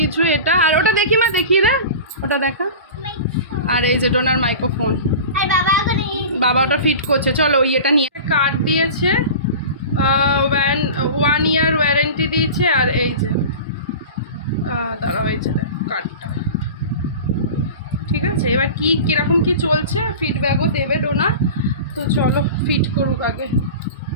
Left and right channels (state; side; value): inverted; both; correlation -0.34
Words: এটা। আর ওটা দেখি মা, দেখিয়ে দে, ওটা দেখা। আর এই যে ডোনার মাইক্রোফোন, বাবা ওটা ফিট করছে। চলো এটা নিয়ে কার্ড দিয়েছে, 1 ইয়ার ওয়ারেন্টি দিয়েছে। আর এই যে দাঁড়াও, এই যে কার্ডটা। ঠিক আছে, এবার কিরকম কি চলছে ফিডব্যাকও দেবে ডোনা। তো চলো ফিট করুক আগে।